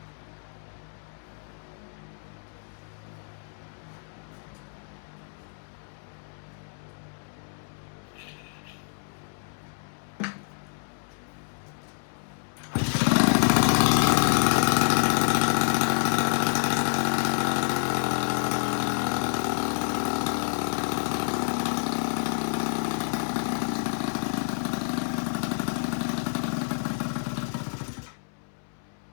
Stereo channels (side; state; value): right; silent; 59 dB below the other